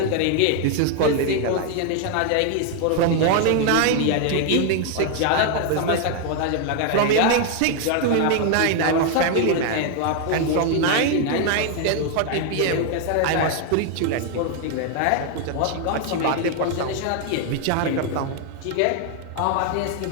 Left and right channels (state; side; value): different; both; correlation 0.00